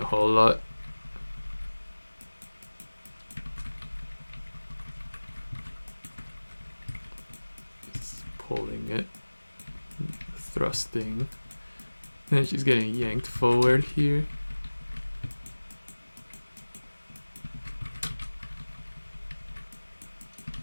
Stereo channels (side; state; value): both; inverted; correlation -1.00